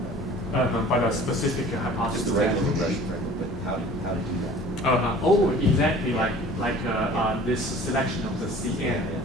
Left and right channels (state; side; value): normal; both; correlation 0.47